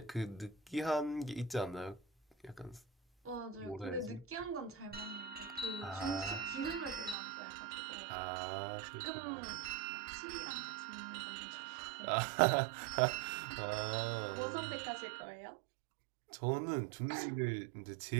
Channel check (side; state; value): left; drops out; at 7.2 s